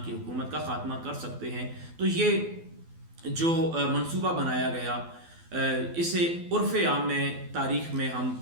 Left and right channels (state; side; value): late; left; 12 ms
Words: کی حکومت کا خاتمہ کر سکتے ہیں. تو یہ جو منصوبہ بنایا گیا اسے عرف عام میں تاریخ میں ہم